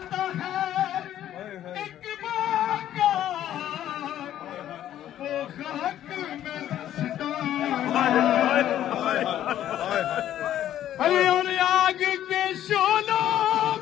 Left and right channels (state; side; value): quieter; right; 11.8 dB